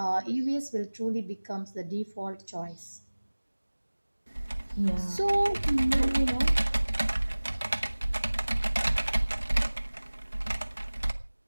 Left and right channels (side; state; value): both; inverted; correlation -1.00